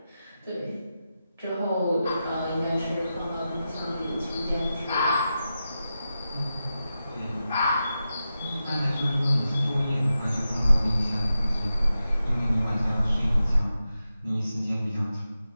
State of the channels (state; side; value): inverted; both; correlation -0.91